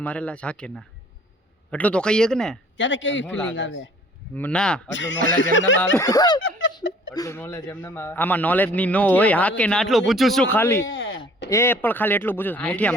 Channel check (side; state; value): both; normal; correlation 0.54